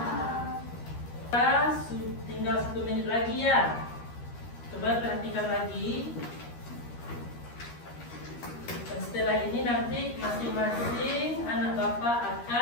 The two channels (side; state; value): right; late; 13 ms